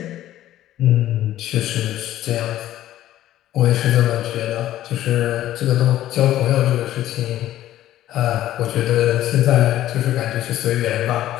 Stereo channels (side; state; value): right; quieter; 13.4 dB